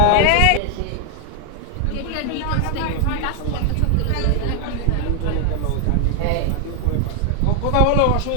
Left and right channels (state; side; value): different; both; correlation 0.00